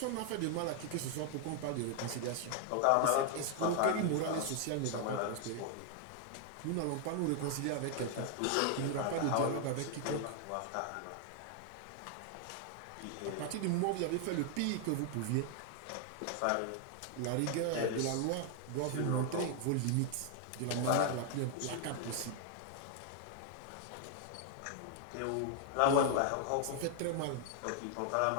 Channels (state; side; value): different; both; correlation 0.00